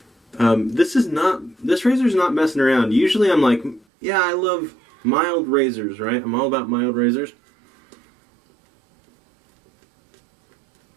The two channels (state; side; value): drops out; left; at 3.9 s